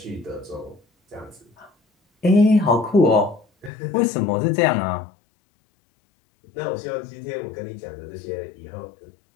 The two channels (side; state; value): right; drops out; at 3.7 s